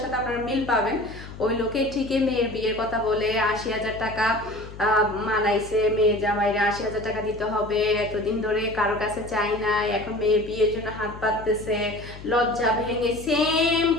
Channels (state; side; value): noise; left; hum, 14 dB below the sound